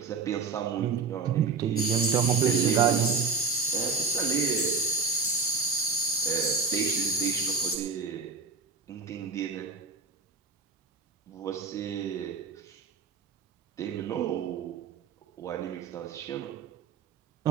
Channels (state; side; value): quieter; left; 4.8 dB